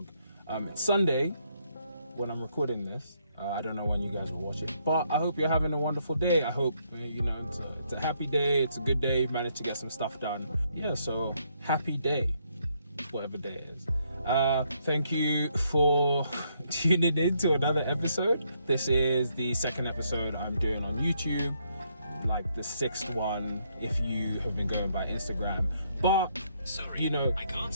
It's Sunday when I'm recording this. I don't know when you guys will watch it, but I hope you're having a wonderful day. I hope, it's a happy day. It's a good day. You've managed to get some stuff done. Yeah, so happy day, whatever day it is. Thank you for tuning in to another episode. This is the second episode I'm doing on YouTube, like the sixth one if you have been going by Instagram. But sorry, I can't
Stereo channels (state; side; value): inverted; both; correlation -0.73